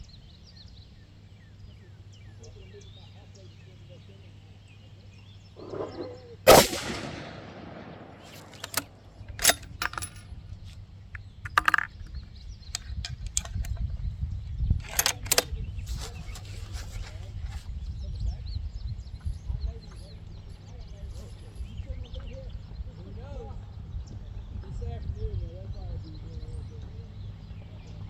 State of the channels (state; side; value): identical; both; correlation 1.00